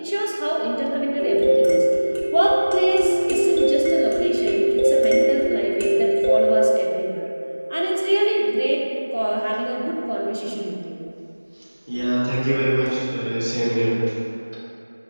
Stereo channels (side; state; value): both; inverted; correlation -1.00